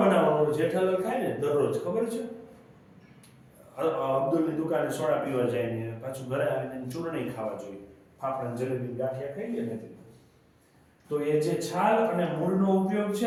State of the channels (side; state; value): both; identical; correlation 1.00